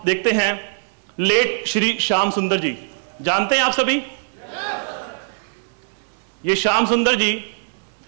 देखते हैं, लेट श्री श्याम सुंदर जी, जानते हैं आप सभी? ये श्याम सुंदर जी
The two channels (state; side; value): silent; left; digital silence